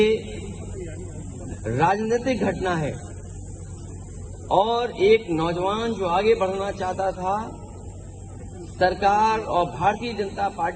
राजनीतिक घटना है, और एक नौजवान जो आगे बढ़ना चाहता था, सरकार और भारतीय जनता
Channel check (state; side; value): identical; both; correlation 1.00